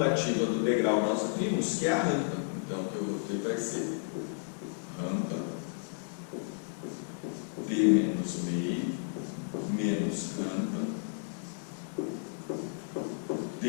do degrau nós vimos que é a rampa. Então, o que eu vou ter vai ser rampa t menos meio menos rampa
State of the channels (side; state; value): right; silent; digital silence